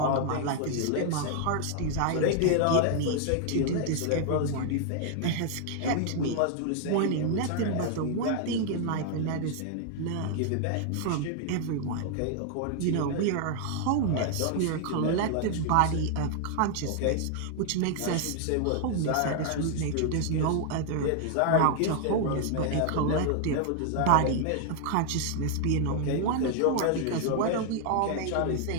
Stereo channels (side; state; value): both; different; correlation 0.00